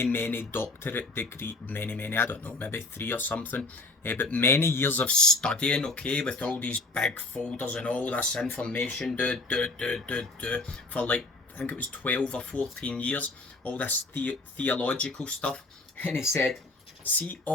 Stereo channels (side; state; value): right; quieter; 3.1 dB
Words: doctorate degree, many, I don't know, maybe 3 or something, but many years of studying, okay, with all these big folders and all this information, for like, I think it was 12 or 14 years, all this theological stuff. And he said, see